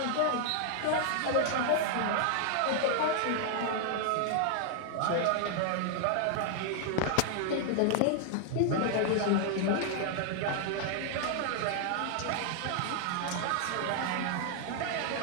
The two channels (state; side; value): different; both; correlation 0.00